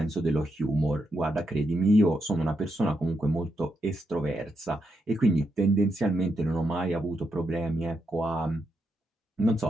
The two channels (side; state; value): both; normal; correlation 0.82